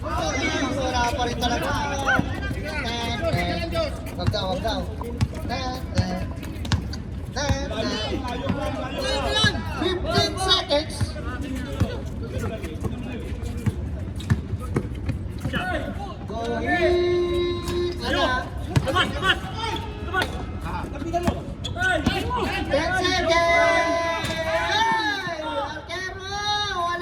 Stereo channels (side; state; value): both; identical; correlation 1.00